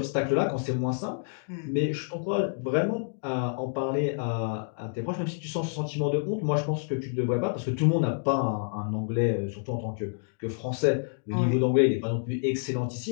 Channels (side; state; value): right; silent; digital silence